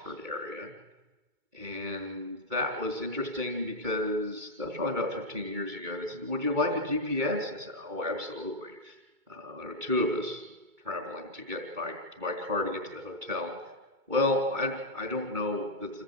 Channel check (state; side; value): late; left; 2.2 ms